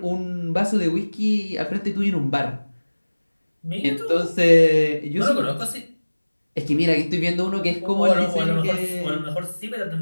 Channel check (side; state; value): both; inverted; correlation -1.00